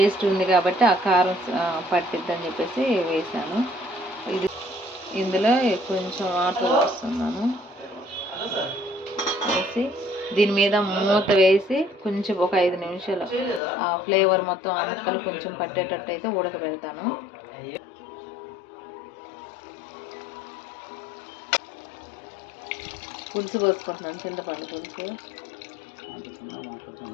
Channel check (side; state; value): right; drops out; at 13.6 s